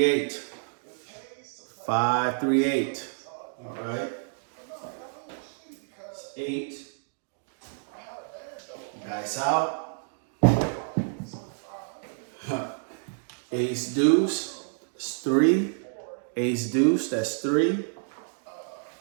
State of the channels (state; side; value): silent; left; 59 dB below the other